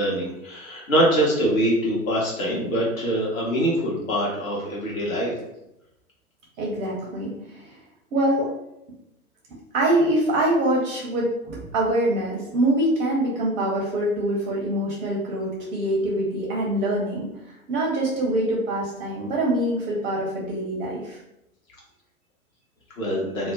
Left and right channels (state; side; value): normal; both; correlation 0.34